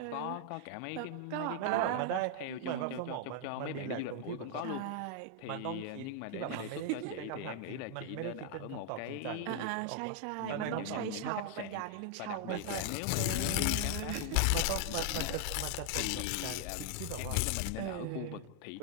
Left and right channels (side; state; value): both; different; correlation 0.00